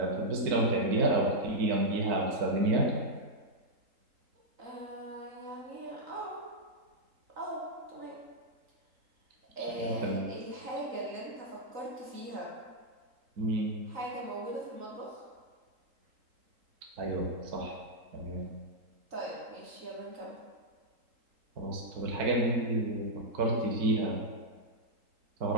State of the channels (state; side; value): late; left; 3.8 ms